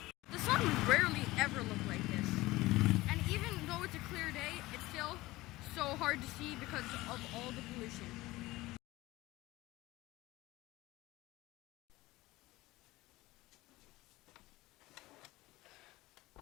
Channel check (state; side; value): quieter; right; 19.1 dB